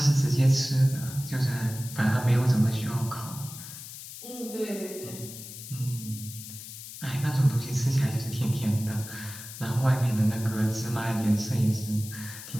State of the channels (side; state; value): left; noise; hiss, 12 dB below the sound